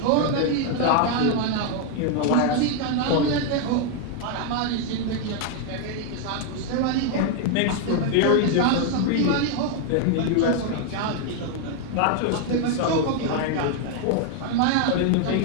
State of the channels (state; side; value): different; both; correlation 0.00